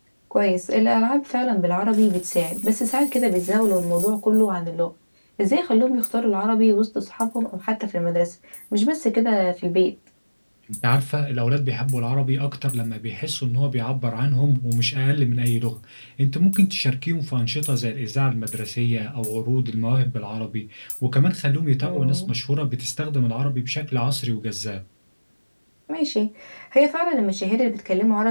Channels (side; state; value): both; inverted; correlation -1.00